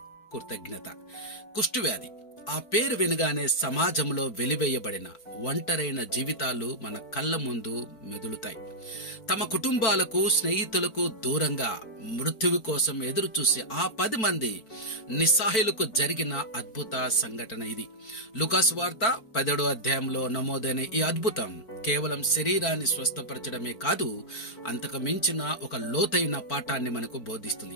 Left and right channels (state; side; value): late; right; 4.6 ms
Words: కృతజ్ఞత. కుష్ఠవ్యాధి ఆ పేరు వినగానే సమాజంలో వెలివేయబడిన ఒంటరైన జీవితాలు మన కళ్ళ ముందు మెదులుతాయి. తమ కుటుంబాలకు, స్నేహితులకు దూరంగా మృత్యువు కోసం ఎదురు చూసి ఆ 10 మంది నిస్సహాయులకు జరిగిన అద్భుత సంఘటన ఇది. లూకాసు వార్త 17వ అధ్యాయంలో నమోదైన ఈ అద్భుతం కేవలం శరీరాన్ని స్వస్థపరచడమే కాదు, అంతకు మించిన ఒక లోతైన పాఠాన్ని మనకు